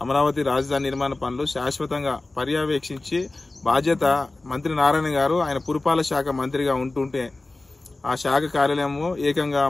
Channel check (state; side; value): quieter; right; 3.1 dB